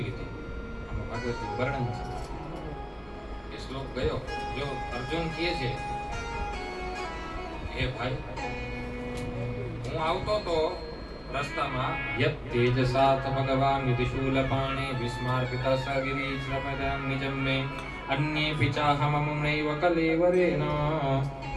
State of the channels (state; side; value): identical; both; correlation 1.00